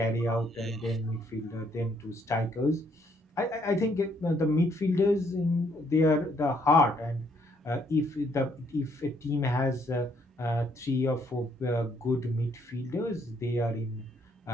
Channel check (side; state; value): both; normal; correlation 0.69